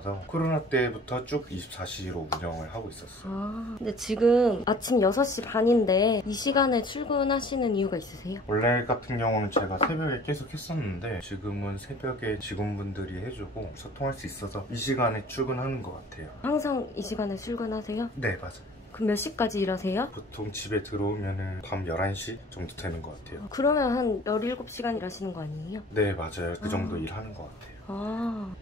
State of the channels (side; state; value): both; normal; correlation 0.48